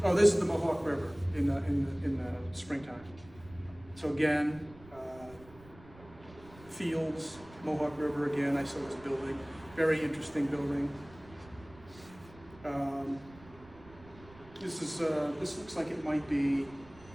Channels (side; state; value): right; noise; rumble, 21 dB below the sound